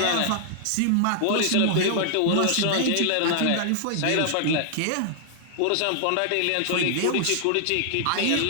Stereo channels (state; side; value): different; both; correlation -0.01